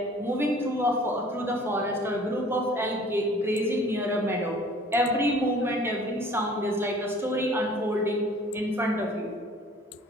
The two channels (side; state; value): both; normal; correlation 0.50